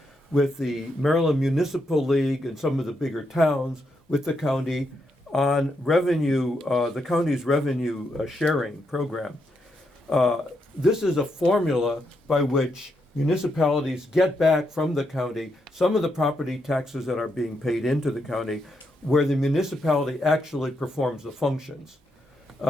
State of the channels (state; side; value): normal; both; correlation 0.80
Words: with the Maryland Municipal League and some of the bigger towns with the county on revenue, the county's revenue sharing program. This is a formula by which municipalities get back from the county some of the property taxes that are being paid into the county, where the municipality actually performs the functions,